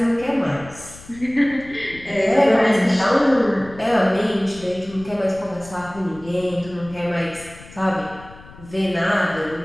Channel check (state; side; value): noise; left; rumble, 19 dB below the sound